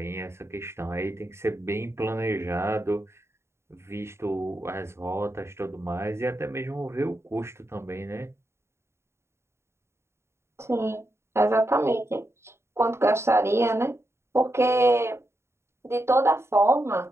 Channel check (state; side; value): late; left; 0.13 ms